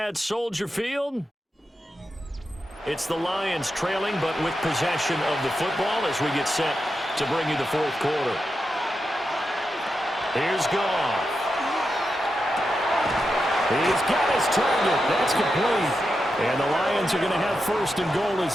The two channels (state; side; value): normal; both; correlation 0.88